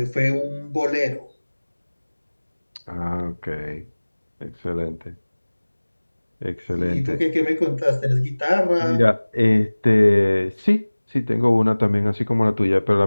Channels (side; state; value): both; inverted; correlation -1.00